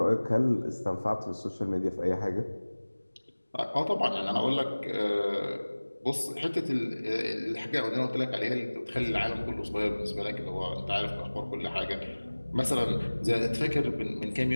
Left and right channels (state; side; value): inverted; both; correlation -1.00